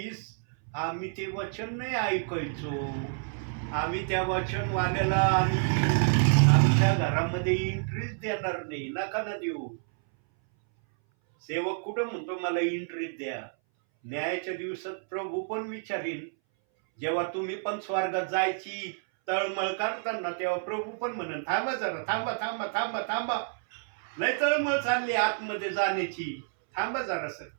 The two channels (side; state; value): left; silent; 58 dB below the other